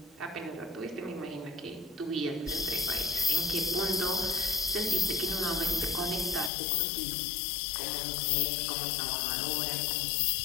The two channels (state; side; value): drops out; right; at 6.5 s